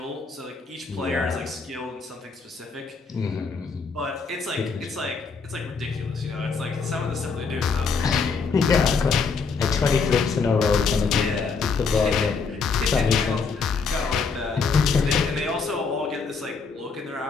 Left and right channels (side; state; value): right; quieter; 4.9 dB